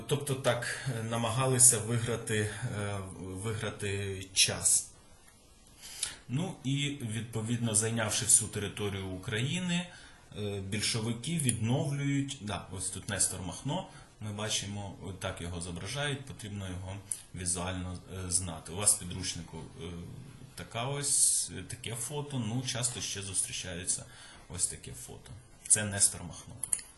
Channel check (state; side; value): identical; both; correlation 1.00